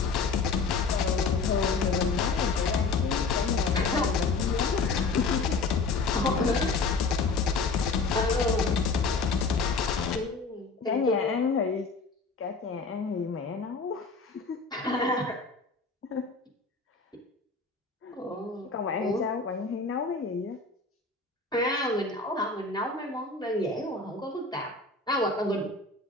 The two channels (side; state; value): right; quieter; 4.2 dB